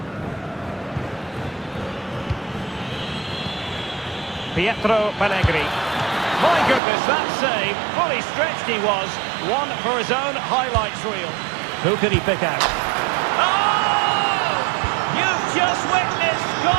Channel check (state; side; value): drops out; left; at 6.8 s